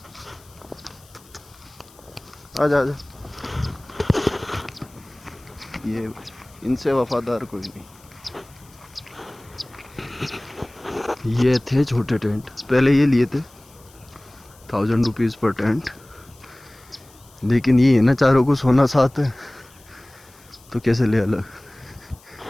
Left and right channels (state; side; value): noise; left; hiss, 26 dB below the sound